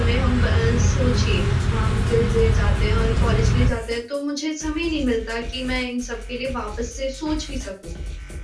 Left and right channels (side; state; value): both; identical; correlation 1.00